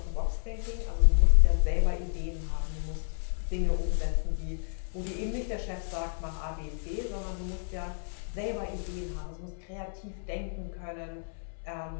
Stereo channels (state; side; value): silent; right; 57 dB below the other